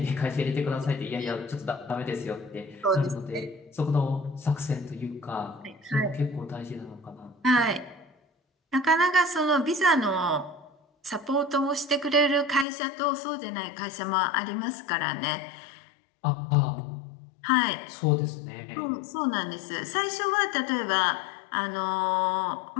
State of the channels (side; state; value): right; drops out; at 12.7 s